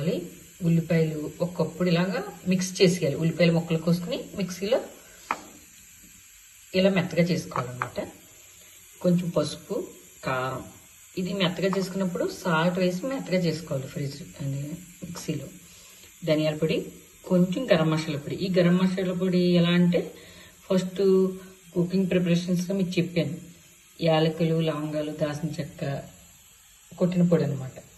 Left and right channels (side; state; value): both; identical; correlation 1.00